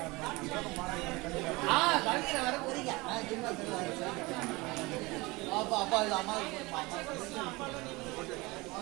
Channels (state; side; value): quieter; left; 23.4 dB